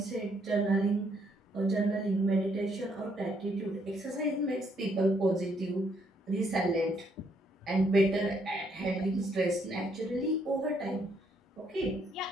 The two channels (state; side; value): normal; both; correlation 0.71